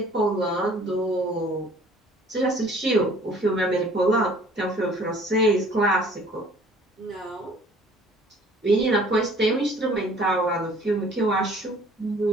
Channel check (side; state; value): both; normal; correlation 0.54